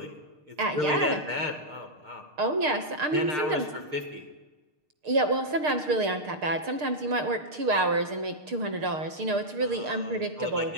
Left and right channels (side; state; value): left; late; 6.6 ms